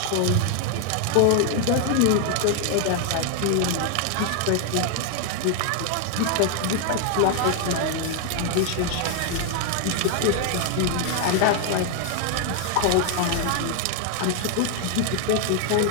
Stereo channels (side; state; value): both; different; correlation 0.00